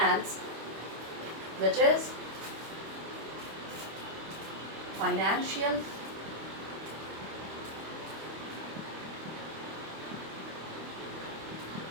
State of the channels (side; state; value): left; late; 25 ms